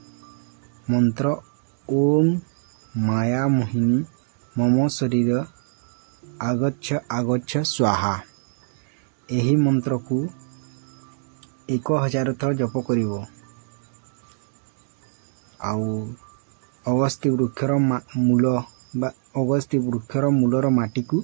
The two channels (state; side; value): silent; left; digital silence